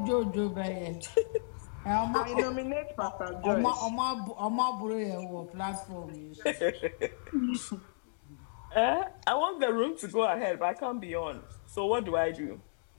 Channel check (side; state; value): right; silent; digital silence